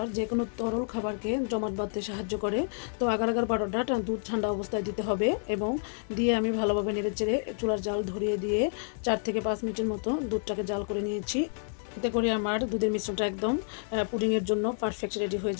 যে কোনো তরল খাবারকে জমাট বাঁধতে সাহায্য করে। তো আগার আগার পাউডারটা দুধ ঠান্ডা অবস্থায় দিতে হবে, এবং দিয়ে আমি ভালোভাবে নেড়েচেড়ে চুলার জাল ধরিয়ে দিয়ে 4 থেকে 5 মিনিটের মতো দুধটাকে জাল করে নিয়েছি। এতে করে আমার দুধের মিশ্রণটা একদম পুডিংয়ের জন্য পারফেক্ট রেডি হয়ে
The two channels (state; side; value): silent; right; 58 dB below the other